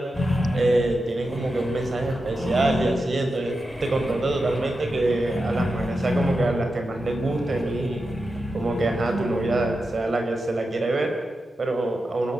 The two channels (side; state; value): both; normal; correlation 0.90